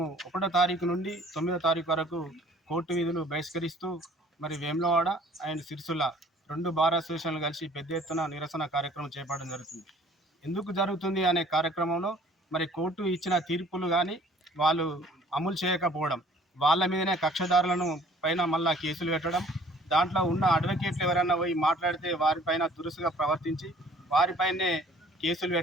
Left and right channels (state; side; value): normal; both; correlation 0.54